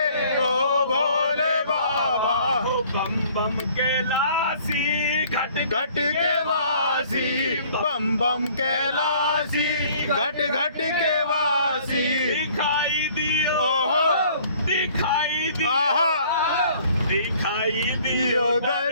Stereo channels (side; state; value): both; inverted; correlation -0.55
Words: ओ भोले बाबा। ओ बम बम कैलासी घट घट के वासी, बम बम कैलासी घट घट के वासी। दिखाई दियो ओहो, दिखाई दियो आहा, दिखाई दियो